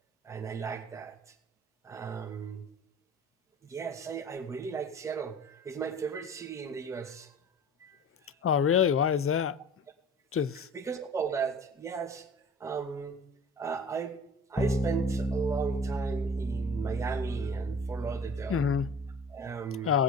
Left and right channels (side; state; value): both; normal; correlation 0.42